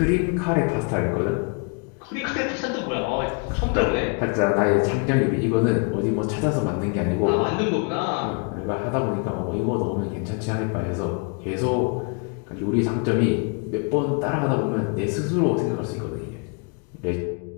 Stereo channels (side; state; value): right; quieter; 36.2 dB